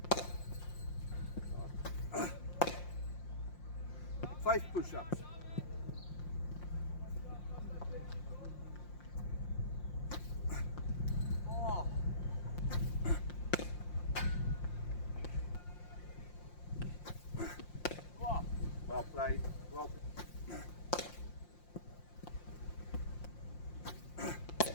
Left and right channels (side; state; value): right; late; 5.7 ms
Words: 5 push-ups. Well played. Well.